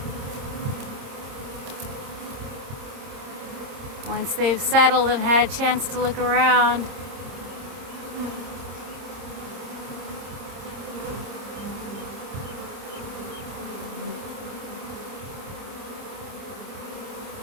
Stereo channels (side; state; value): left; late; 26 ms